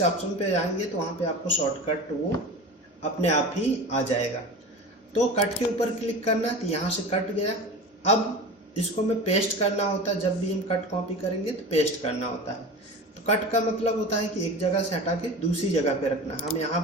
ऑप्शन पे जाएंगे तो वहाँ पे आपको शॉर्टकट वो अपने आप ही आ जाएगा। तो कट के ऊपर क्लिक करना, तो यहाँ से कट गया। अब इसको में पेस्ट करना होता है, जब भी हम कट कॉपी करेंगे तो पेस्ट करना होता है। तो कट का मतलब होता है कि एक जगह से हटा के दूसरी जगह पे रखना। हम यहाँ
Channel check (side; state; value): both; normal; correlation 0.32